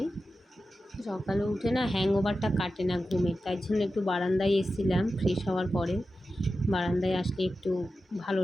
সকালে উঠে না হ্যাংওভারটা কাটে না ঘুমের, তাই জন্য একটু বারান্দায় এসেছিলাম ফ্রেশ হওয়ার পরে। বারান্দায় আসলে একটু ভালো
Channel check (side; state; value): both; normal; correlation 0.92